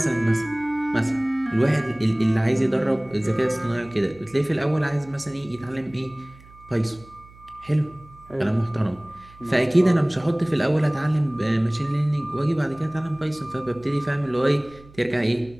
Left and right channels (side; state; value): right; noise; hum, 23 dB below the sound